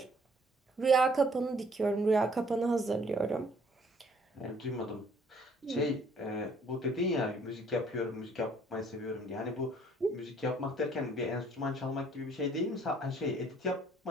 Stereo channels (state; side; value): normal; both; correlation 0.61